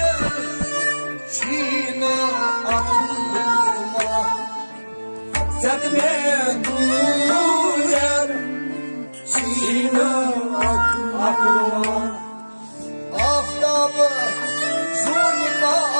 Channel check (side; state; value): both; inverted; correlation -1.00